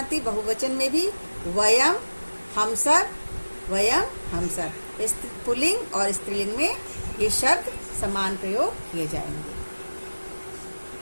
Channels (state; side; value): inverted; both; correlation -1.00